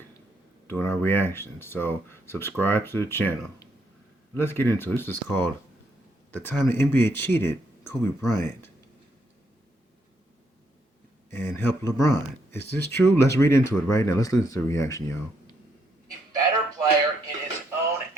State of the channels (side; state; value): both; normal; correlation 0.75